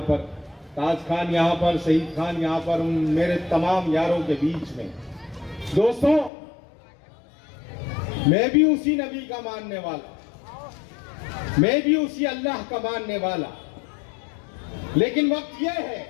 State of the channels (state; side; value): drops out; right; at 6.3 s